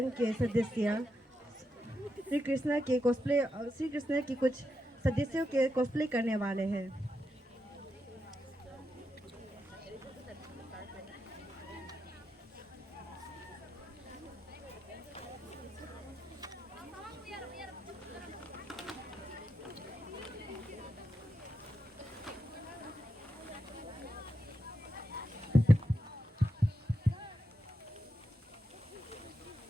के सदस्य श्री कृष्ण की कुछ सदस्यों के कॉस्प्ले करने वाले हैं।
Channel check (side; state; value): both; normal; correlation 0.86